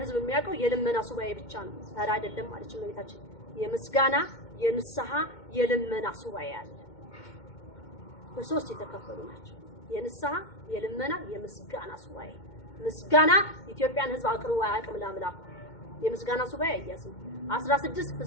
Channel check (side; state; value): right; late; 2.2 ms